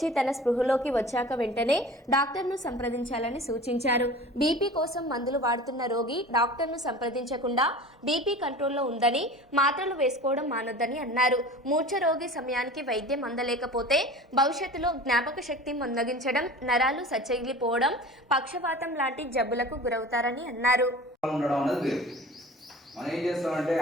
తన స్పృహలోకి వచ్చాక వెంటనే డాక్టర్ను సంప్రదించాలని సూచించారు. బీపీ కోసం మందులు వాడుతున్న రోగి డాక్టర్ను సంప్రదించకుండా బీపీ కంట్రోల్లో ఉందని, మాత్రలు వేసుకోవడం మానొద్దని అన్నారు. మూర్ఛ రోగి సమయానికి వైద్యం అందలేకపోతే భవిష్యత్తులో జ్ఞాపక శక్తి మందగించడం, నరాలు సచ్చగిలిపోవడం, పక్షవాతం లాంటి జబ్బులకు గురవుతారని అన్నారు. మనం ఏం చేస్తామంటే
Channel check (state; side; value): normal; both; correlation 0.39